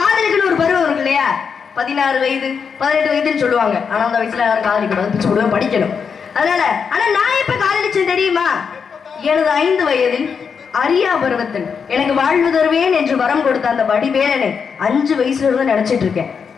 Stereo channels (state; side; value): quieter; right; 6.2 dB